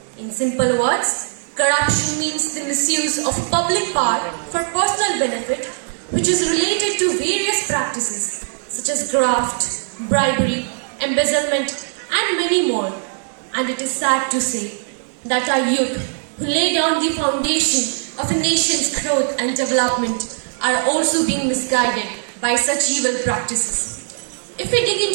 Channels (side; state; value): left; silent; 66 dB below the other